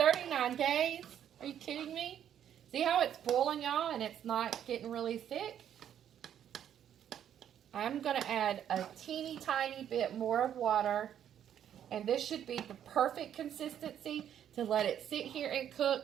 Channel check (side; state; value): left; quieter; 9.9 dB